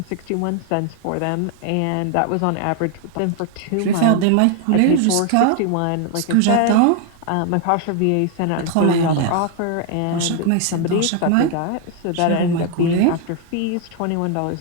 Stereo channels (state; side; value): different; both; correlation 0.00